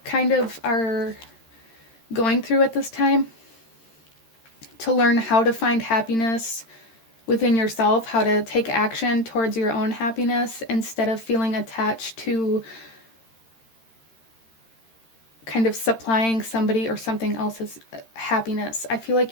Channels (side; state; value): right; late; 13 ms